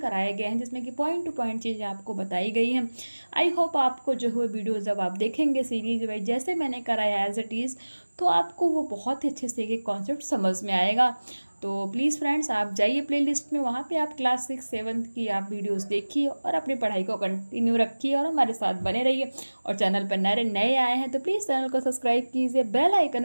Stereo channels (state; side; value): inverted; both; correlation -1.00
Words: गए हैं, जिसमें कि पॉइंट टू पॉइंट चीज़ें आपको बताई गई हैं। आई होप आपको जो है वीडियो जब आप देखेंगे सीरीज वाइज जैसे मैंने कराया एज इट इज़, तो आपको वो बहुत ही अच्छे से एक कॉन्सेप्ट समझ में आएगा। तो प्लीज़ फ्रेंड्स, आप जाइए प्लेलिस्ट में, वहाँ पे आप क्लास 6 7 की आप वीडियोस देखिए और अपनी पढ़ाई को कंटिन्यू रखिए और हमारे साथ बने रहिए। और चैनल पर नए नए आए हैं तो प्लीज़ चैनल को सब्सक्राइब कीजिए, बेल